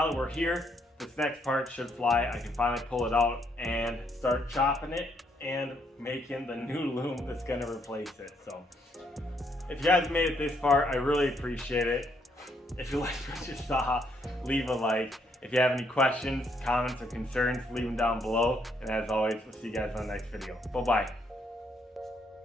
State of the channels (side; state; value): both; normal; correlation 0.72